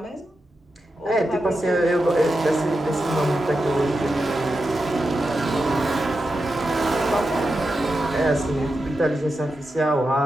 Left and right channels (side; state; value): both; normal; correlation 0.89